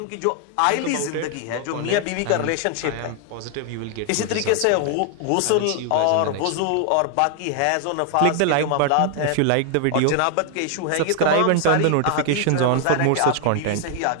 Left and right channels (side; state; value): both; different; correlation 0.00